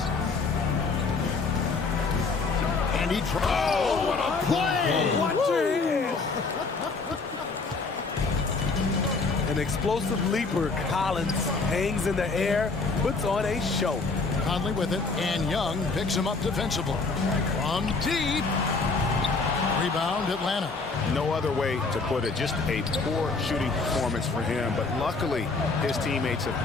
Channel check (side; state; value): right; quieter; 4.1 dB